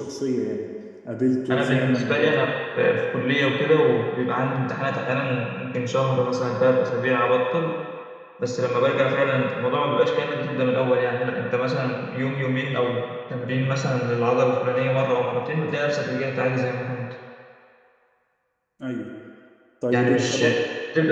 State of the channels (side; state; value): both; identical; correlation 1.00